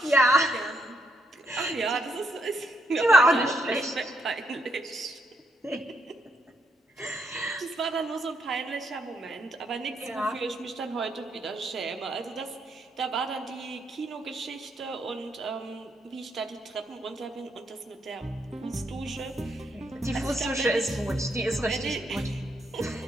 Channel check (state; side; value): normal; both; correlation 0.76